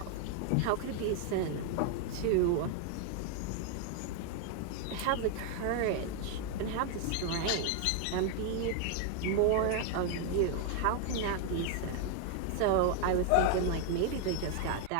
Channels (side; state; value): both; different; correlation 0.00